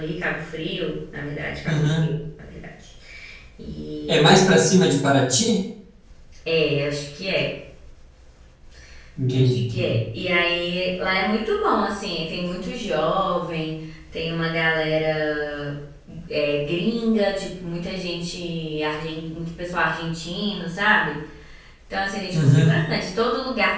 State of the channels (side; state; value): both; identical; correlation 1.00